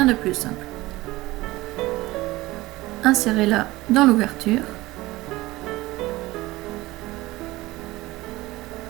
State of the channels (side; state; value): left; quieter; 19.1 dB